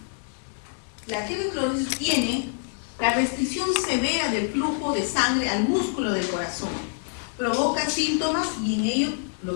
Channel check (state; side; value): silent; right; 61 dB below the other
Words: La arteriosclerosis tiene la restricción severa del flujo de sangre al músculo del corazón. Provoca síntomas, y en ello